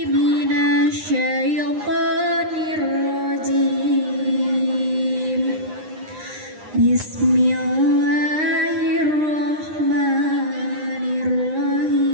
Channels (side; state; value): left; late; 9.8 ms